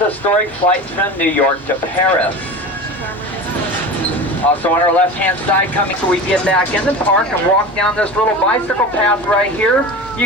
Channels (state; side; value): normal; both; correlation 0.31